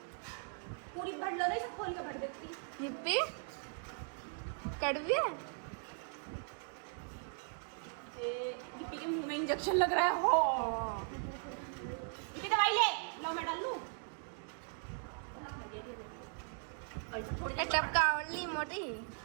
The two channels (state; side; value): silent; left; 52 dB below the other